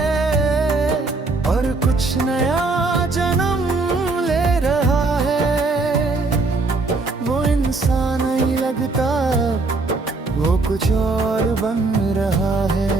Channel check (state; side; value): quieter; left; 3.6 dB